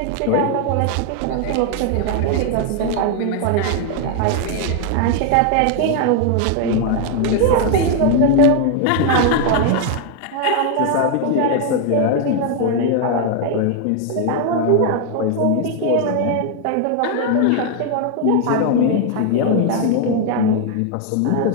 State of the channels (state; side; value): different; both; correlation 0.00